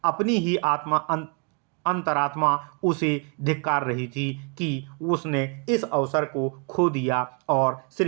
अपनी ही अंतरात्मा उसे धिक्कार रही थी कि उसने इस अवसर को खो दिया और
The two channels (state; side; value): quieter; left; 37.3 dB